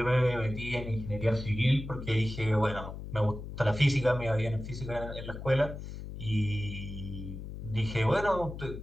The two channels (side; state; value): left; noise; hum, 9 dB below the sound